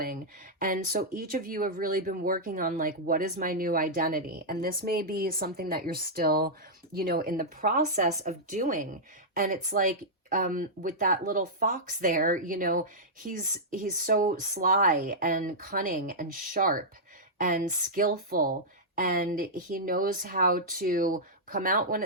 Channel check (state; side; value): normal; both; correlation -0.09